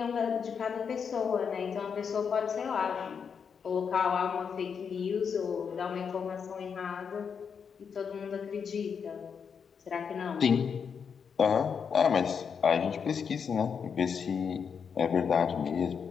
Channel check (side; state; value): right; quieter; 6.6 dB